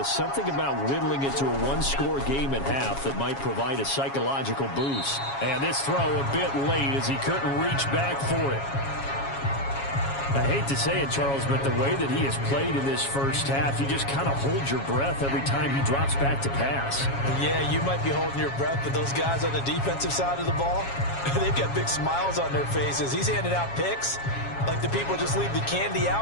something about whittling it to a 1-score game at half that might provide a psychological boost. And this throw a bit late as he couldn't reach back for it. I hate to say it, Charles, but the way that he has played in this first half, you just kind of hold your breath every time he drops back to pass. Yeah, you might be holding your breath, but those guys on the defensive side of the ball, they've got big smiles on their faces. He's handing out picks like the people just leave the candy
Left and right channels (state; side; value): late; right; 7.3 ms